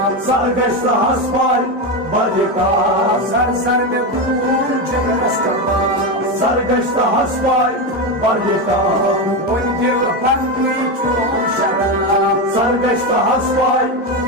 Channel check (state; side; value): normal; both; correlation 0.13